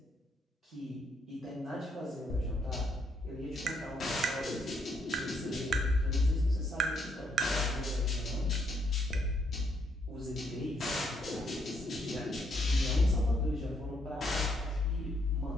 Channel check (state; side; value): normal; both; correlation 0.72